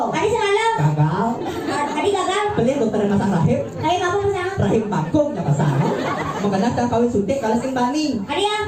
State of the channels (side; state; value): right; noise; rumble, 26 dB below the sound